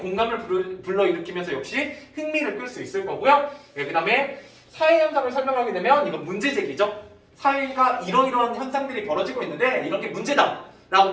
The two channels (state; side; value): identical; both; correlation 1.00